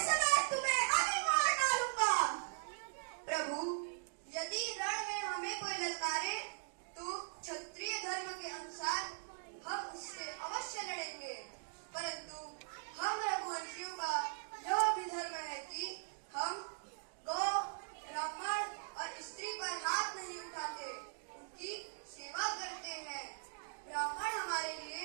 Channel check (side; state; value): left; silent; digital silence